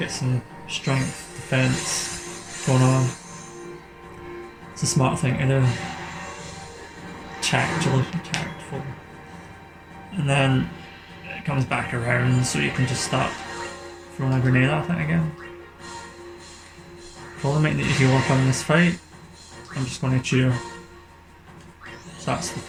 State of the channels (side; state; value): both; identical; correlation 1.00